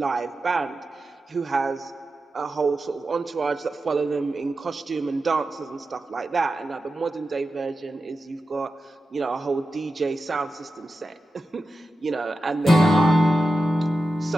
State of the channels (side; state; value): both; normal; correlation 0.92